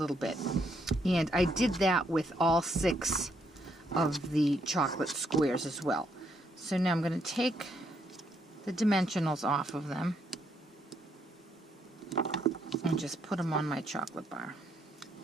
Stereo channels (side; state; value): both; normal; correlation 0.74